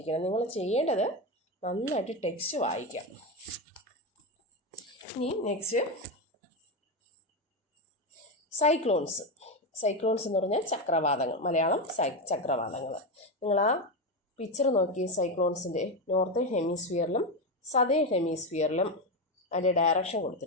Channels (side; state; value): both; normal; correlation 0.12